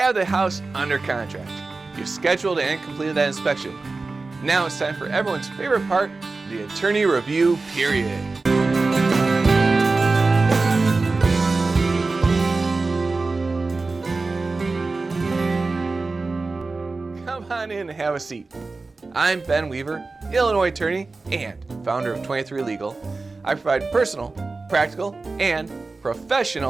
the house under contract. You've scheduled and completed that inspection. Now it's time for everyone's favorite part, the attorney review period. Come on in and have a seat. I'm Ben Weaver, Illinois attorney and founder of 23 Legal. I provide personal, practical, and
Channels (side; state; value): left; quieter; 3.7 dB